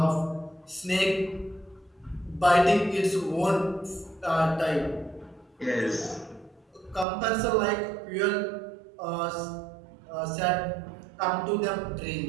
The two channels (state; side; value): drops out; left; at 7.1 s